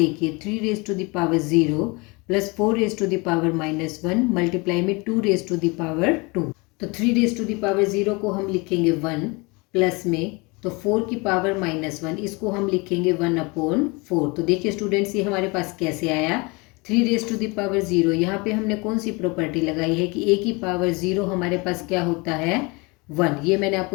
3 raise to the power 0 + 4 raise to the power -1 multiply में 2 रेज़ टू द पावर 2। तो 3 रेज़ टू द पावर 0 को हम लिखेंगे 1, प्लस में तो 4 की पावर -1 इसको हम लिखेंगे 1/4। तो देखिए स्टूडेंट्स ये हमारे पास कैसे आया, 3 रेज़ टू द पावर 0, यहाँ पे हमने कौन सी प्रॉपर्टी लगाई है कि a की पावर 0 हमारे पास क्या होता है 1, ये मैंने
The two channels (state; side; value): quieter; right; 27.3 dB